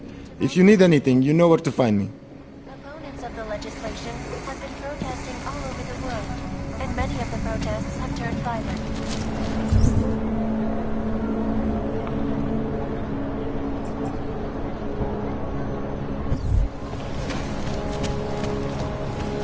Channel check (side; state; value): both; identical; correlation 1.00